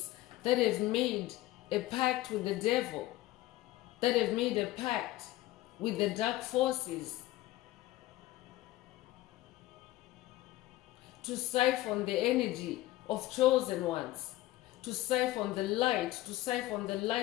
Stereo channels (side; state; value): right; quieter; 16.6 dB